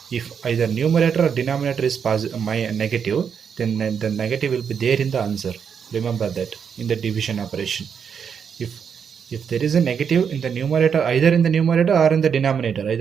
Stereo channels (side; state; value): left; quieter; 7.1 dB